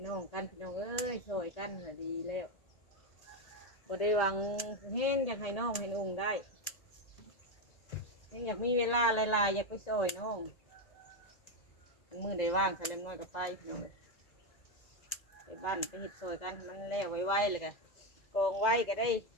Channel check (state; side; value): late; right; 1.9 ms